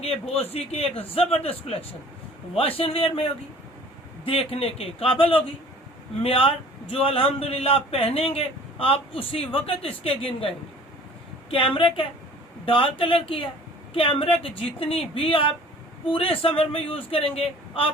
बोस जी की एक जबरदस्त कलेक्शन। वॉशन वेयर में होगी, देखने के काबिल होगी, म्यार जो अल्हम्दुलिल्लाह पहनेंगे आप उसी वक्त इसके गिन गाएंगे। कैमरिक है, डार्क कलर की है। कैमरिक जितनी भी आप पूरे समर में यूज करेंगे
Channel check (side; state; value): both; normal; correlation 0.49